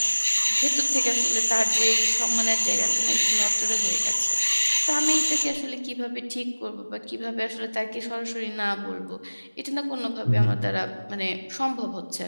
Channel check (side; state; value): both; inverted; correlation -1.00